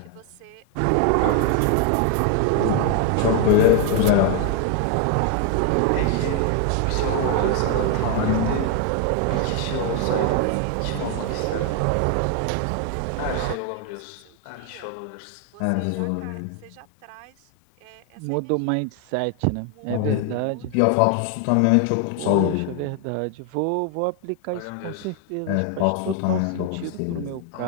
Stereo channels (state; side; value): different; both; correlation 0.00